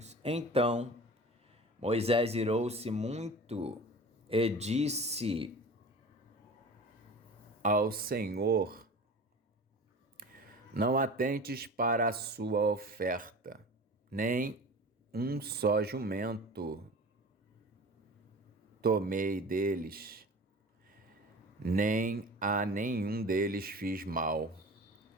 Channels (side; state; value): both; normal; correlation 0.37